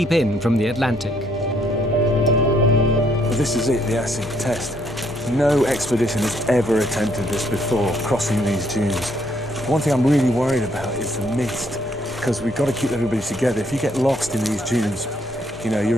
in from the Atlantic. Well, this is it, the acid test. No expedition has ever attempted this before, crossing these dunes. One thing I'm really worried about is the mist, because we've got to keep everybody together. If you get lost in these dunes, you know,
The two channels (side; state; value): both; normal; correlation 0.70